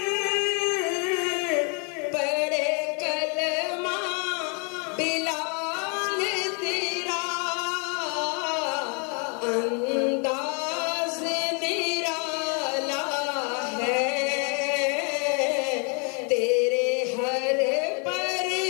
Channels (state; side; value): quieter; right; 36.4 dB